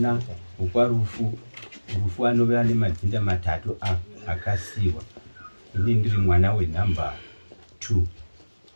wekwaRufu. Rufu anove ane madzinda matatu akasiwa. Ini ndiri mwana wenhamba 2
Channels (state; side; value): inverted; both; correlation -1.00